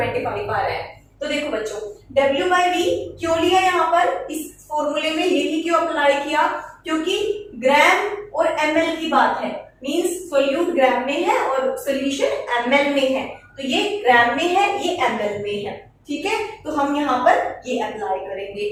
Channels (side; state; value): both; identical; correlation 1.00